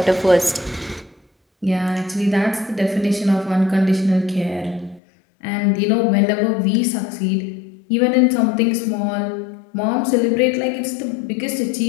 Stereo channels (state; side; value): drops out; right; at 5.0 s